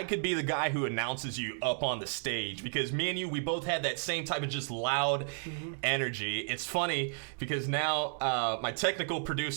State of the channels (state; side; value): silent; left; 56 dB below the other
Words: could be the guy who announces you up on the stage, because me and you, we both had that same type of just loud energy. It's funny because now my technical